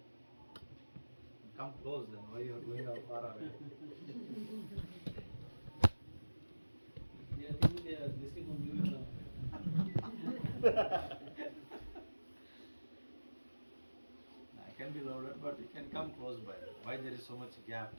Come close then. Why you are going out far away? I think they are listening from you now. I can be louder, but you can come close by. Why there is so much gap?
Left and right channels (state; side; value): inverted; both; correlation -1.00